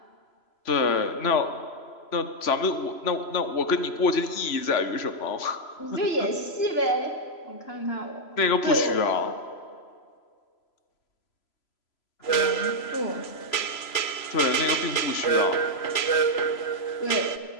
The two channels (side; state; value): right; late; 3.0 ms